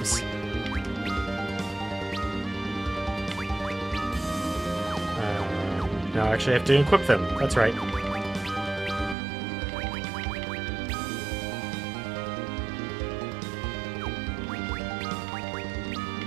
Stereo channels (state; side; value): drops out; left; at 9.2 s